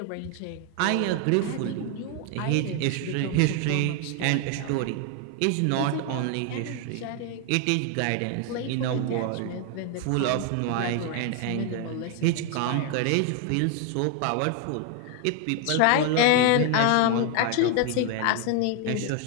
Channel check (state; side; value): different; both; correlation 0.01